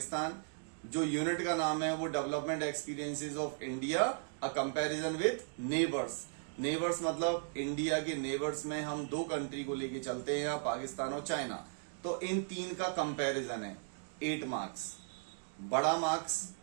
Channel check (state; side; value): silent; left; digital silence